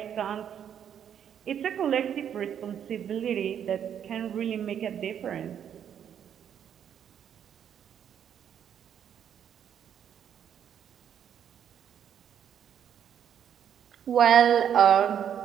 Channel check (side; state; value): left; quieter; 9.0 dB